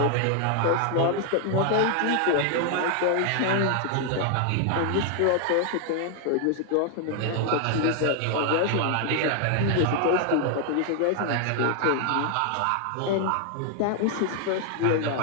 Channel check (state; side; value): different; both; correlation 0.00